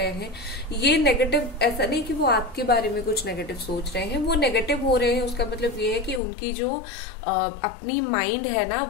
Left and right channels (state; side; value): drops out; right; at 6.2 s